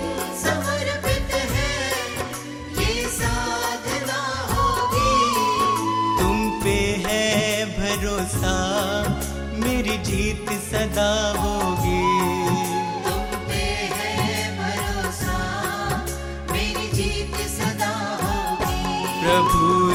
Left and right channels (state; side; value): identical; both; correlation 1.00